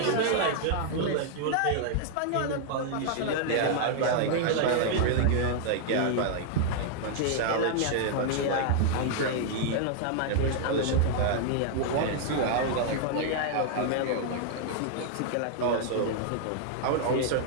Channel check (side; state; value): both; different; correlation -0.01